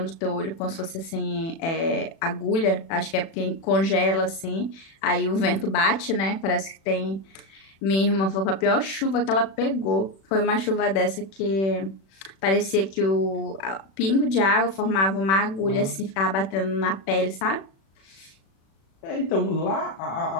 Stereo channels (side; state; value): right; late; 36 ms